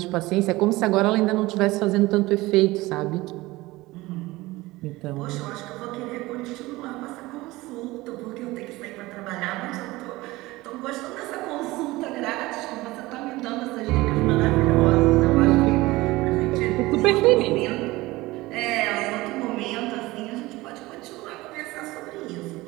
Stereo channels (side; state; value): left; quieter; 19.8 dB